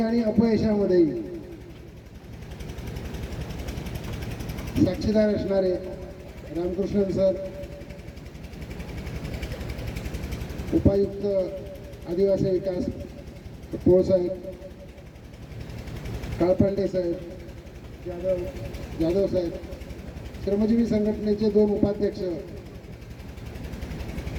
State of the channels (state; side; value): identical; both; correlation 1.00